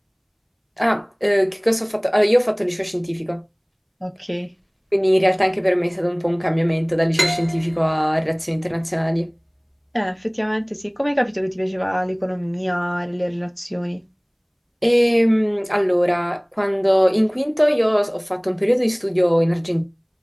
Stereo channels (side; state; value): both; identical; correlation 1.00